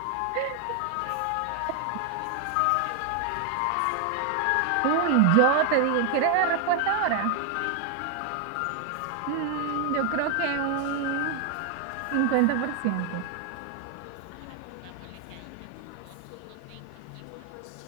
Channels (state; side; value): different; both; correlation 0.01